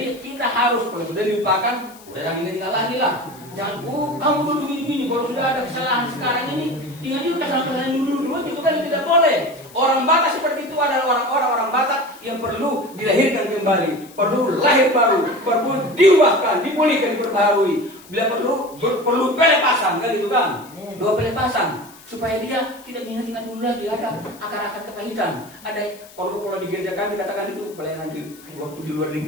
kita harus kalau sudah dilupakan, udah jangan ingat lagi lah. Jangan kamu dulu begini. Kalau sudah ada kesalahan sekarang ini, ingat juga kesalahan dulu itu kan tidak boleh. Orang Batak seperti itu adalah orang-orang Batak yang perlu dilahirkan kembali, perlu lahir baru, perlu diubahkan, dipulihkan, diperbaharui. Bila perlu pelepasan kan itu kan, 2 pelepasan. Supaya dia tidak ingat-ingat dulu lagi ada akar-akar kepahitan. Ada kalau di gereja kami dikatakan itu pelayanan waktu di luar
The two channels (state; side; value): noise; left; hiss, 22 dB below the sound